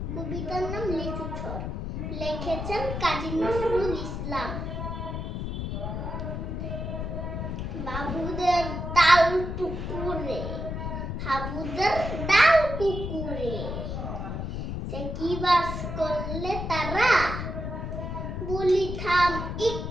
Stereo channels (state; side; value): noise; left; rumble, 4 dB below the sound